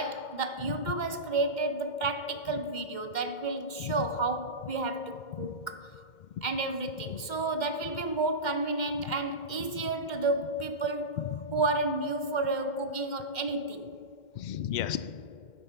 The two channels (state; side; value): late; right; 2.1 ms